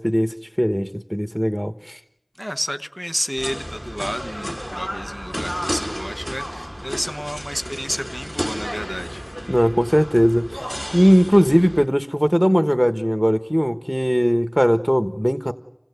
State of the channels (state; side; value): identical; both; correlation 1.00